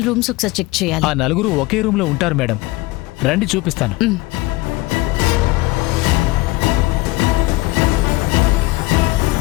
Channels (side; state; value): right; quieter; 20.9 dB